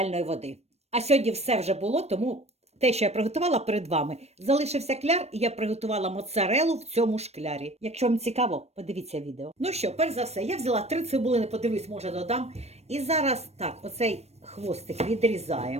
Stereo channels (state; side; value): late; left; 0.31 ms